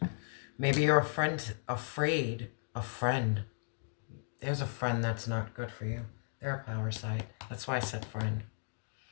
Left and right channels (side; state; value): right; silent; digital silence